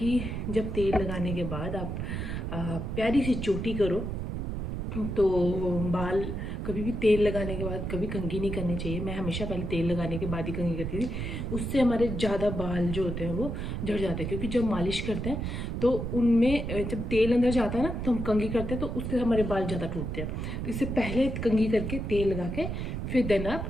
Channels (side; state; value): right; noise; rumble, 4 dB below the sound